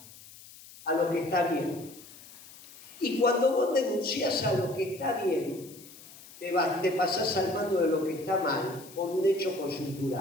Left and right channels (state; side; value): noise; left; hiss, 19 dB below the sound